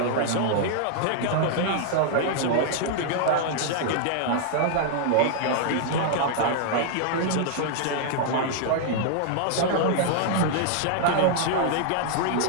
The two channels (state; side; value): different; both; correlation -0.01